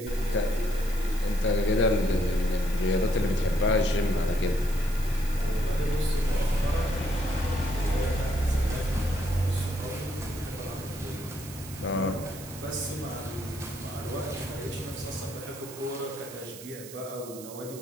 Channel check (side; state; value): right; noise; hiss, 15 dB below the sound